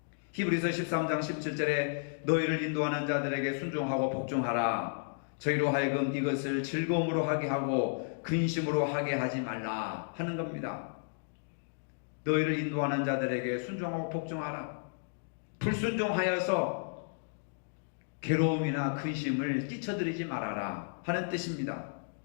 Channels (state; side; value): silent; right; digital silence